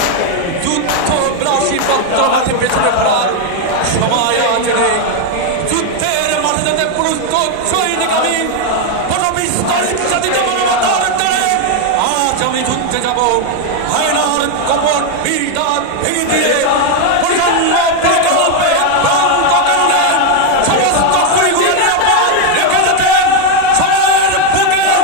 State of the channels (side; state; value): both; different; correlation 0.01